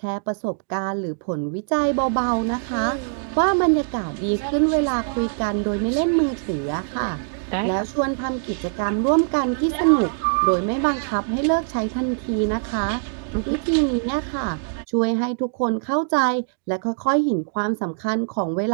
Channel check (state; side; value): silent; left; digital silence